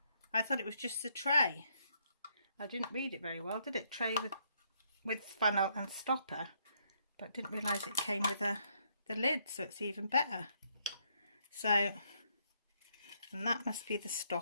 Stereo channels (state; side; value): inverted; both; correlation -0.72